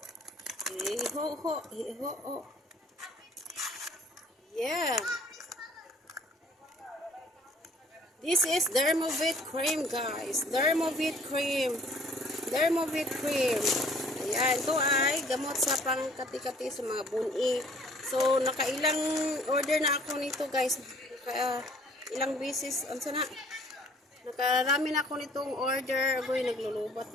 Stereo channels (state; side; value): normal; both; correlation 0.56